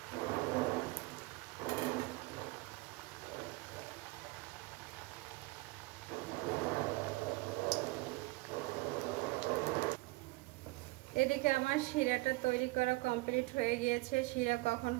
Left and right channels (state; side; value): quieter; left; 22.9 dB